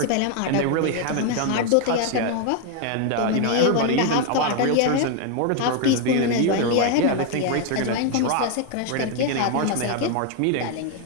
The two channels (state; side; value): different; both; correlation 0.01